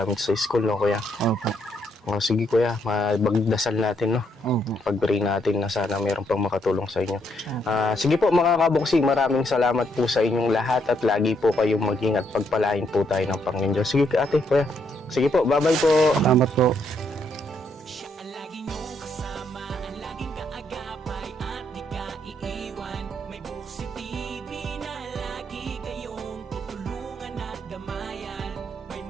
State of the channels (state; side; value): normal; both; correlation 0.74